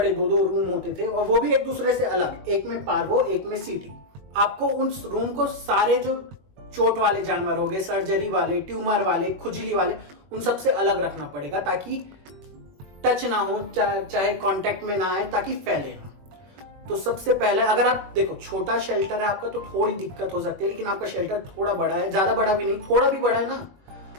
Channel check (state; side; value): late; left; 21 ms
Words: दो रूम होते थे और वो भी एक दूसरे से अलग, एक में पार्वो एक में सीटी। आपको उस रूम को सारे जो चोट वाले जानवर हो गए, सर्जरी वाले, ट्यूमर वाले, खुजली वाले, उन सबसे अलग रखना पड़ेगा ताकि टच ना हो, चाहे कांटेक्ट में ना आए, ताकि फैले ना। तो सबसे पहले अगर आप देखो छोटा शेल्टर है आपका तो थोड़ी दिक्कत हो सकती है, लेकिन आपका शेल्टर थोड़ा बड़ा है, ज्यादा बड़ा भी नहीं, थोड़ा भी बड़ा है ना,